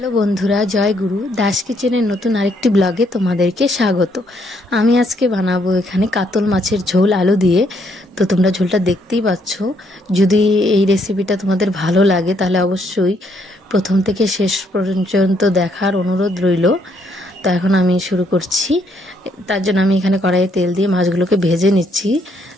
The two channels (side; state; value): both; normal; correlation 0.71